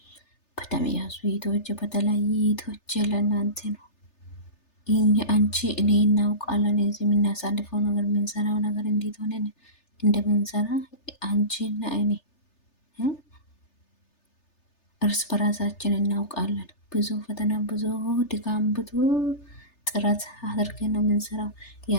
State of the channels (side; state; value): right; late; 3.3 ms